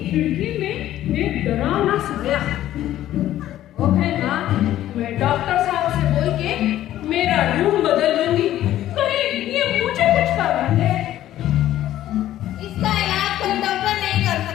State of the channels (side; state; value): right; quieter; 13.1 dB